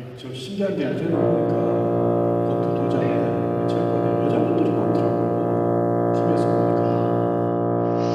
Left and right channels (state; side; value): identical; both; correlation 1.00